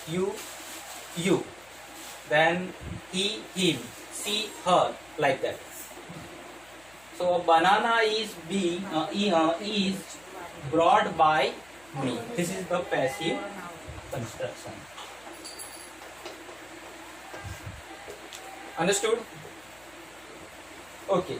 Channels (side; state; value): left; noise; hum, 27 dB below the sound